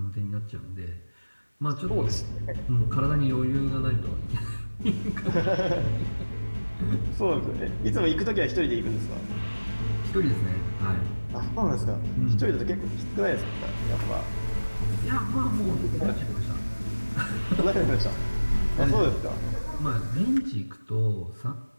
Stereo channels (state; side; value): inverted; both; correlation -1.00